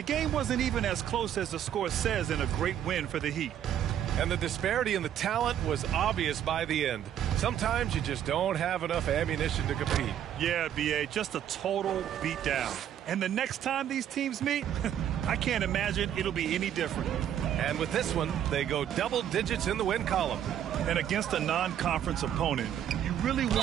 game wasn't even as close as the score says in a great win for the Heat. And the disparity in the talent was obvious by the end. Sometimes you just don't have enough ammunition to compete. Yeah, B.A., just a total beatdown. And the next time these teams meet, I can't imagine it'll be any different. And with this one, they go double digits in the win column. And against a non-conference opponent, you really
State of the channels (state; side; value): quieter; left; 10.2 dB